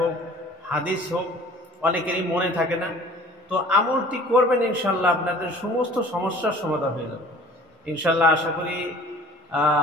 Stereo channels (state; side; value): normal; both; correlation 0.49